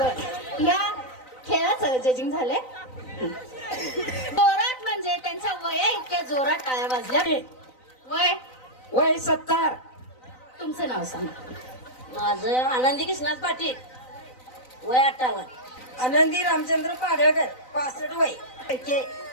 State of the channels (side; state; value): right; late; 3.9 ms